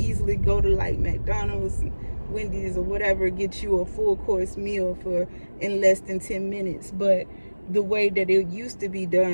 go to like McDonald's, Wendy's, or whatever, get you a full course meal in less than 10 minutes. But the way that it used to be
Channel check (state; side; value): inverted; both; correlation -1.00